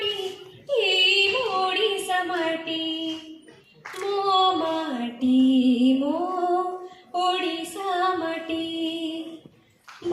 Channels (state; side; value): identical; both; correlation 1.00